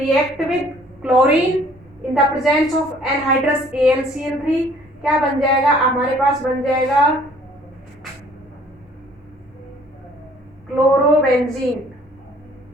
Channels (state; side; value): normal; both; correlation 0.57